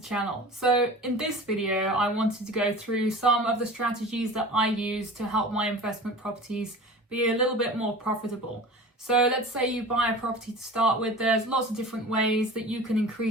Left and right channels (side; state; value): both; normal; correlation 0.37